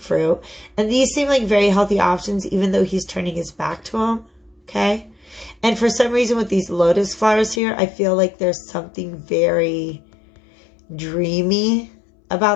And these seem like very healthy options, even though he's turning his back to them. Okay? And for some reason with these lotus flowers here, I feel like there's something very dreamy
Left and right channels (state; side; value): drops out; right; at 7.6 s